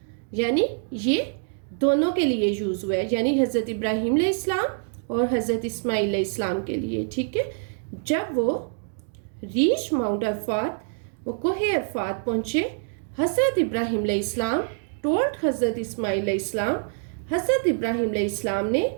یعنی یہ دونوں کے لیے یوز ہوا ہے, یعنی حضرت ابراہیم علیہ السلام اور حضرت اسماعیل علیہ السلام کے لیے, ٹھیک ہے. جب وہ ریچ ماؤنٹ عرفات, وہ کوہ عرفات پہنچے, حضرت ابراہیم علیہ السلام ٹولڈ حضرت اسماعیل علیہ السلام, حضرت ابراہیم علیہ السلام نے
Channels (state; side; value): silent; left; digital silence